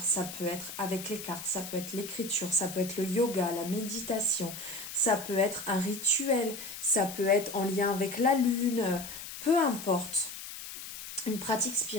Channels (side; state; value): left; noise; hiss, 10 dB below the sound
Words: ça peut être avec les cartes, ça peut être l'écriture, ça peut être le yoga, la méditation, ça peut être un rituel, ça peut être en lien avec la lune, peu importe. Une pratique